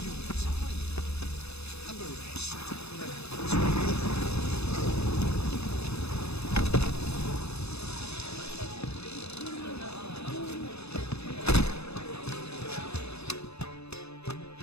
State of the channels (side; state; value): right; late; 0.79 ms